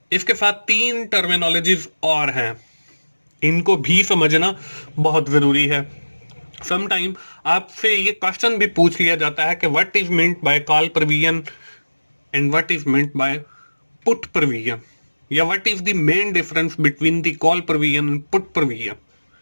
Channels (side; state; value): both; inverted; correlation -1.00